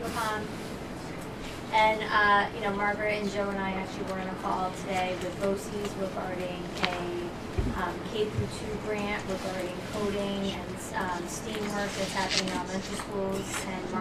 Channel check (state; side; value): identical; both; correlation 1.00